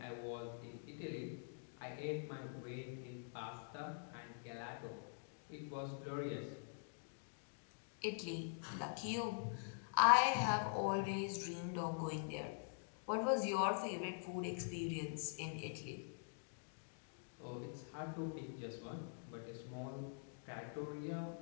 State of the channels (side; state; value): right; silent; digital silence